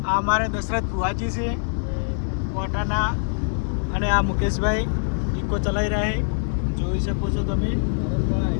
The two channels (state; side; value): silent; right; digital silence